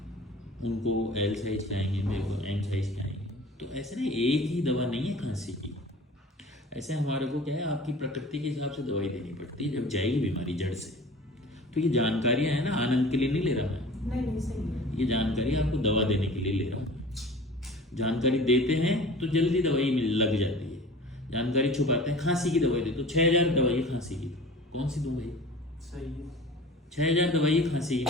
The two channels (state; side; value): normal; both; correlation 0.41